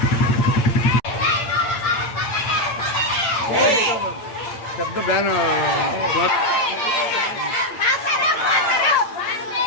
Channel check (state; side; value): late; right; 8.8 ms